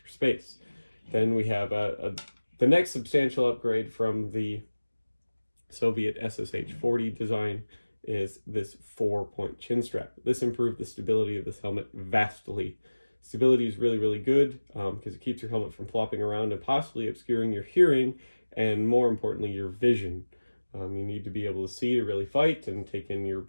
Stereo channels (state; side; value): inverted; both; correlation -1.00